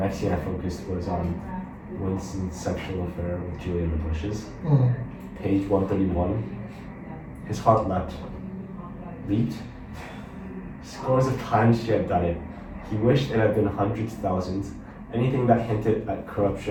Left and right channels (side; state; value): both; identical; correlation 1.00